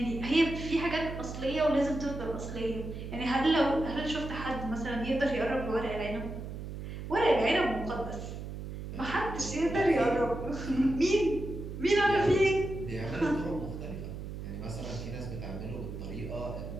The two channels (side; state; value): right; noise; hum, 8 dB below the sound